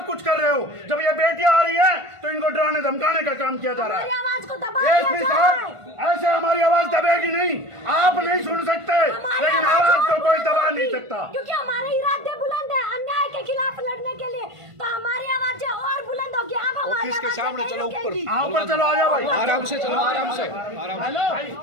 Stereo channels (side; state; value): left; late; 1.5 ms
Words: कुछ कर रहे हो। जब ये बेटियां आ रही हैं तो इनको डराने धमकाने का काम किया जा रहा है। ASP साहब, ऐसे हमारी आवाज दबेगी नहीं, आप नहीं सुन सकते, लेकिन आवाज को कोई दबा नहीं सकता, क्योंकि हमारे इरादे बुलंद है अन्याय के खिलाफ लड़ने के लिए, तो हमारी आवाज और बुलंद होगी। आप हमारे ऑफिस के सामने चलो, ऊपर ऊपर चलो, आ जाओ भाई, आराम से चलो, आराम से।